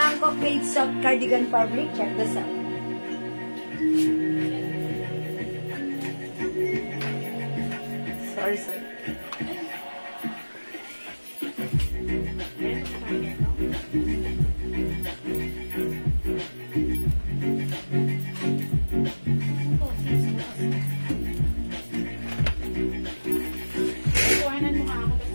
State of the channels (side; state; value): both; inverted; correlation -1.00